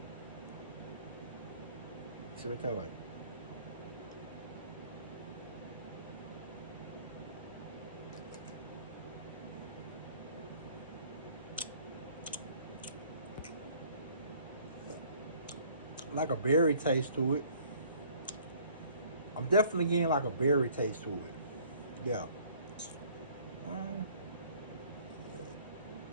See what it tastes like. Like a berry taste to it. I'm definitely getting like a berry taste to it. Yeah.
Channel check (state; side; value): inverted; both; correlation -0.56